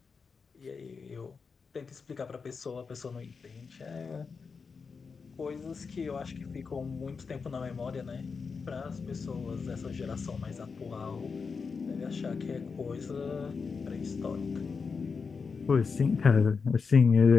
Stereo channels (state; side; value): quieter; right; 5.2 dB